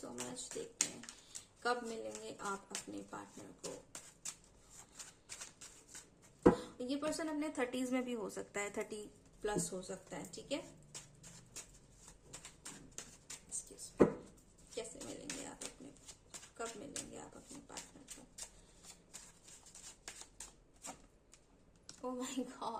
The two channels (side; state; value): both; identical; correlation 1.00